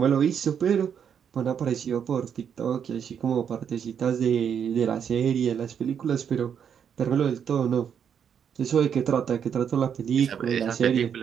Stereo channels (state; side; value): quieter; left; 7.9 dB